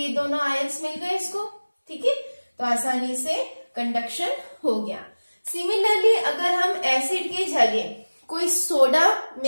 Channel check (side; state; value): both; inverted; correlation -1.00